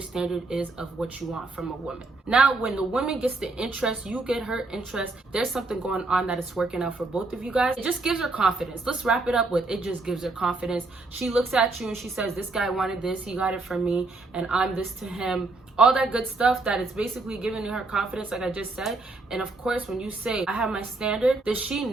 standard is of what you want from a woman. Now, when the woman gets the interest, you get her interest, there's something going on that is working out for both of you guys. It just gives her confidence. Let's wrap it up with, it just gives her confidence. She looks at you and she says, this guy wanted this, he got it from me, and I'm this to him. All that good stuff that is basically giving her confidence, like I just said. And of course, when you say, I have my standard, that she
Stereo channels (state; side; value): quieter; left; 3.4 dB